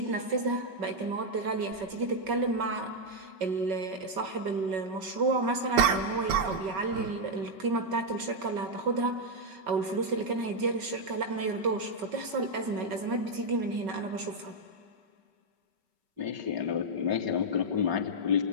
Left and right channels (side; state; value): left; late; 5.3 ms